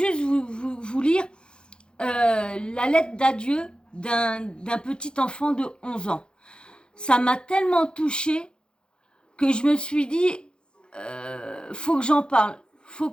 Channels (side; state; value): right; late; 0.050 ms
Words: vous lire la lettre d'adieu d'un petit enfant de 11 ans. Ça m'a tellement touchée que je me suis dit, faut que j'en parle. Faut